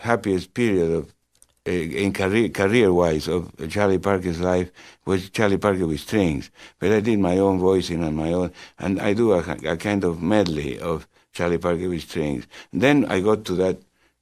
happiest period of in career-wise of Charlie Parker's life, was Charlie Parker with strings. But I did my own voicing and my own, and I do a kind of medley of Charlie Parker with strings. And then I got to that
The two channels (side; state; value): both; identical; correlation 1.00